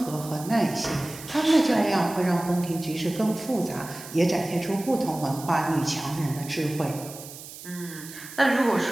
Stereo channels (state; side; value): noise; right; hiss, 14 dB below the sound